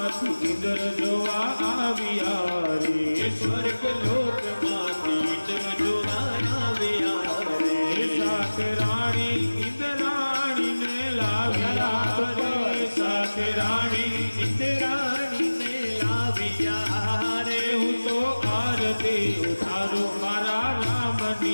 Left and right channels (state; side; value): inverted; both; correlation -1.00